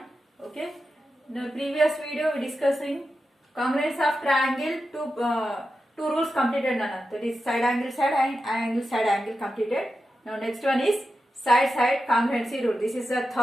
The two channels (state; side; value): normal; both; correlation 0.90